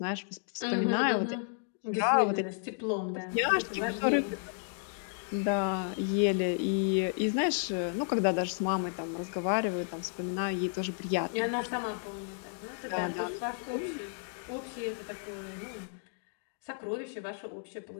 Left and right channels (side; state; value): right; silent; digital silence